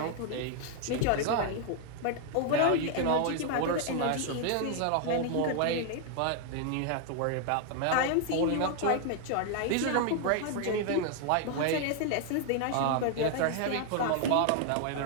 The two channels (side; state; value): both; different; correlation 0.00